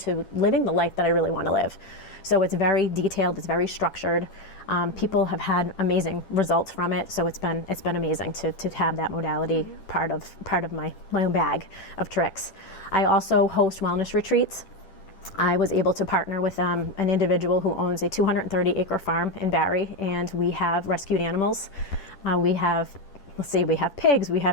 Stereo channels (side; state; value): right; late; 10 ms